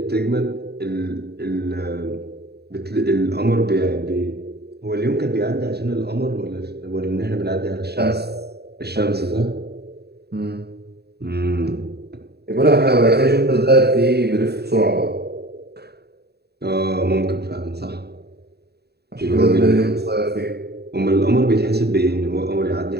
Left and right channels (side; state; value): left; late; 0.47 ms